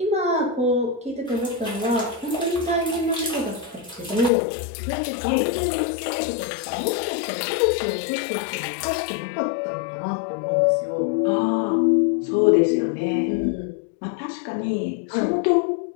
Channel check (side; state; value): right; drops out; at 4.3 s